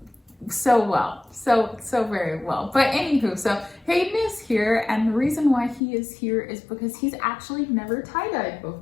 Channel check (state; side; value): drops out; right; at 5.8 s